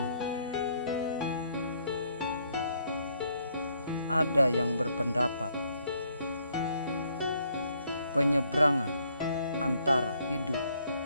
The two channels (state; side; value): inverted; both; correlation -0.69